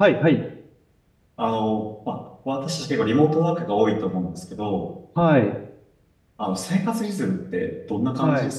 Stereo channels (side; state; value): both; identical; correlation 1.00